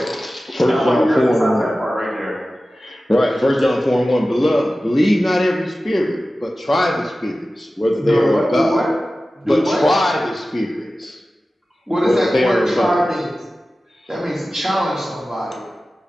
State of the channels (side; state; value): both; normal; correlation 0.95